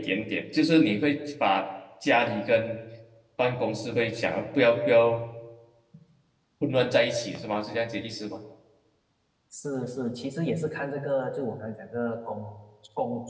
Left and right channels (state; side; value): identical; both; correlation 1.00